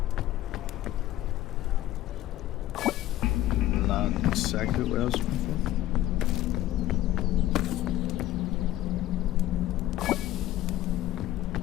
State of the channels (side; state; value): right; quieter; 14.2 dB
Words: Not exactly what I was looking for.